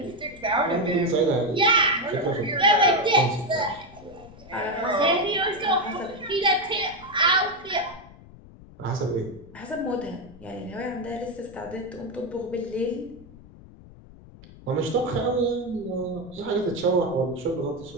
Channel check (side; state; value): left; noise; rumble, 20 dB below the sound